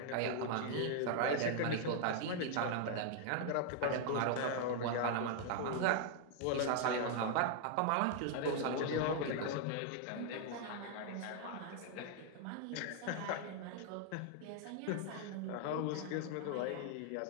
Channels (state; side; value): different; both; correlation 0.00